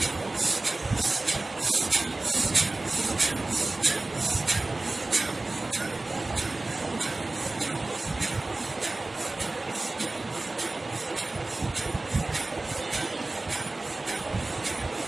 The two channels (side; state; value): left; quieter; 3.0 dB